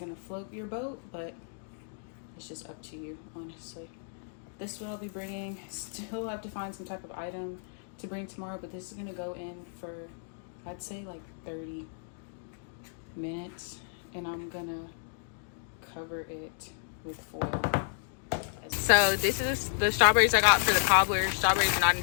float your boat, but it's just up to you, honestly. This is what I'll be bringing. Still have to find some type of item to bring tomorrow, but this is gonna go in for, I'd say like 30 minutes, and I'm gonna cover it with foil. So this is the strawberries I got for the cobbler. Strawberries are not in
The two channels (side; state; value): right; silent; digital silence